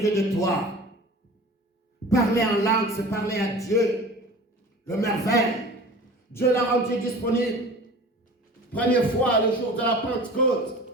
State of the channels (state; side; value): normal; both; correlation 0.40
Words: Dieu, de toi. Parler en langue, c'est parler à Dieu. Le merveille. Dieu l'a rendu disponible. Première fois, le jour de la Pentecôte.